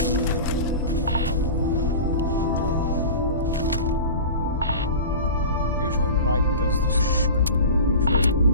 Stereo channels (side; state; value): both; inverted; correlation -0.33